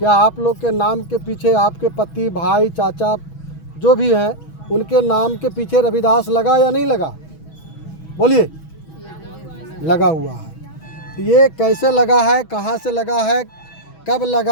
आप लोग के नाम के पीछे आपके पति, भाई, चाचा जो भी हैं, उनके नाम के पीछे रविदास लगा या नहीं लगा? बोलिए। लगा हुआ है। ये कैसे लगा है, कहाँ से लगा है, कब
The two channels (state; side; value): late; right; 6.2 ms